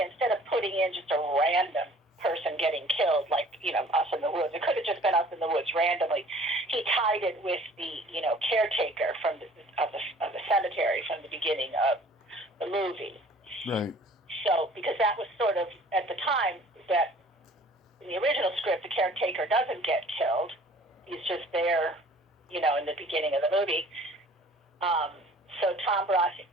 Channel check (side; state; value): both; normal; correlation 0.51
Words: Instead of putting in just a random person getting killed, like, us in the woods, it could have just been us in the woods randomly. He tied it with the, caretaker of the cemetery from the beginning of the movie. Right. So, because that was sort of, at the time, that in the original script, the caretaker doesn't get killed. He's just there, in the beginning of the movie. So Tom